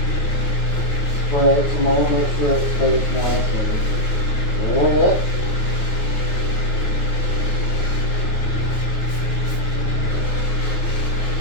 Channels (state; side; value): late; right; 9.3 ms